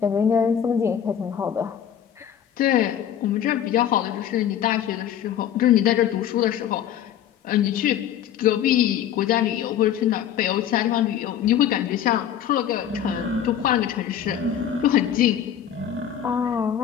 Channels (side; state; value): right; quieter; 9.8 dB